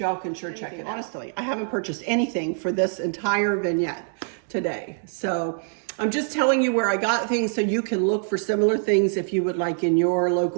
can sure check it out. Honestly, I haven't purchased anything for this entire vignette today. So I'm just telling you where I got things so you can look for similar things if you would like in your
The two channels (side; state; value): left; silent; digital silence